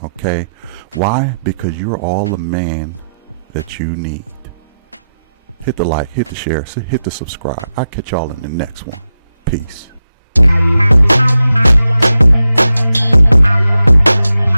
Okay? Why? Because you're all the man that you need. Hit the like, hit the share, hit the subscribe. I'll catch y'all in the next one. Peace.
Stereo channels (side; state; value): both; inverted; correlation -0.89